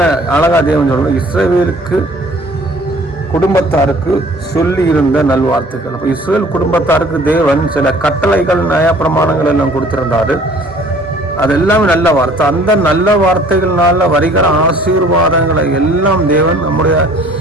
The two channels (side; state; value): both; normal; correlation 0.53